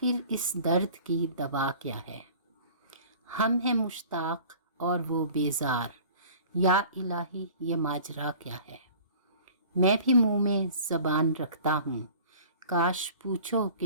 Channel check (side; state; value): both; inverted; correlation -0.45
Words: اس درد کی دوا کیا ہے. ہم ہیں مشتاق اور وہ بیزار، یا الہی یہ ماجرا کیا ہے. میں بھی منہ میں زبان رکھتا ہوں، کاش پوچھو